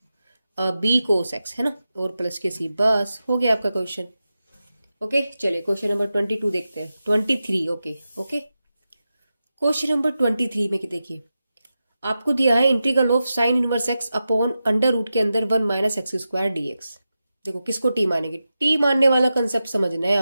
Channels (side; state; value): both; inverted; correlation -0.92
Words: B cos X, है ना, और प्लस के सी, बस हो गया आपका क्वेश्चन। ओके चलिए क्वेश्चन नंबर 22 देखते हैं, 23। ओके क्वेश्चन नंबर 23 में देखिए, आपको दिया है integral of sine inverse x upon under root के अंदर 1 माइनस एक्स स्क्वायर डीएक्स। देखो किसको टी मानेंगे, टी मानने वाला कंसेप्ट समझना है